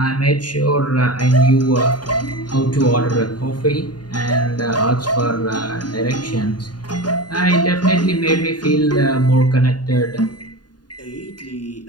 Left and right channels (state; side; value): late; right; 0.70 ms